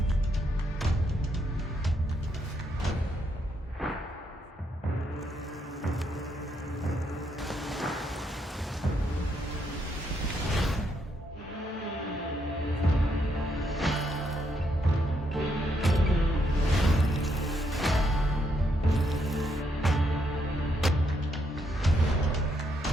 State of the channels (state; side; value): normal; both; correlation 0.76